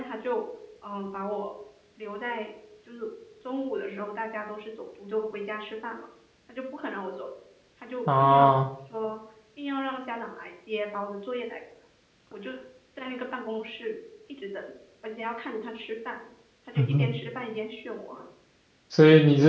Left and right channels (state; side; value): identical; both; correlation 1.00